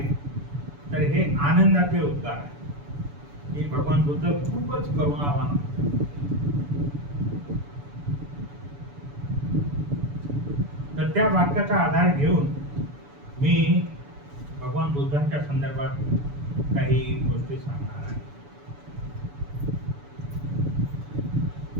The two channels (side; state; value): left; late; 7.0 ms